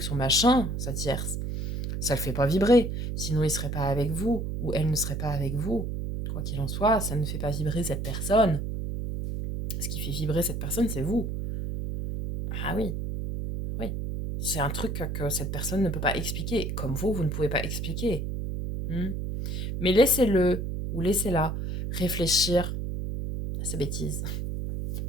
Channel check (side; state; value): right; noise; hum, 3 dB below the sound